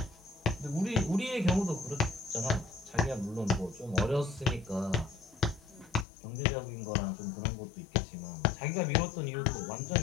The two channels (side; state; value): right; drops out; at 6.1 s